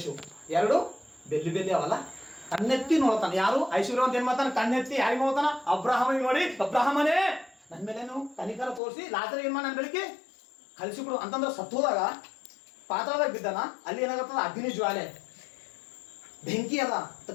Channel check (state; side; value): drops out; right; at 8.8 s